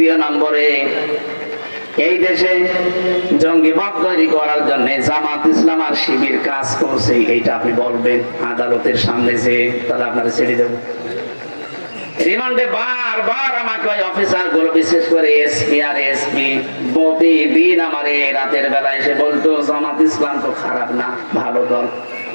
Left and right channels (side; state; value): both; inverted; correlation -1.00